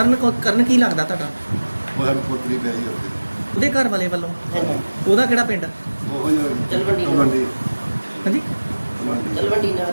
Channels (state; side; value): inverted; both; correlation -1.00